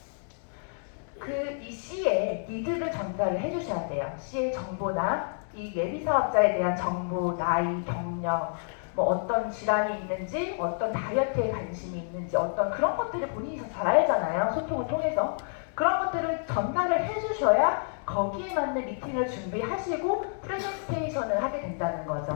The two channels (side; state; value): right; silent; digital silence